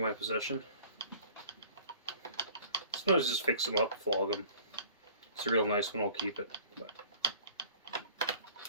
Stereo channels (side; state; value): both; inverted; correlation -0.48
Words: possession. Sometimes just fix them up, flog them. It's a real nice one, I'll keep it. But.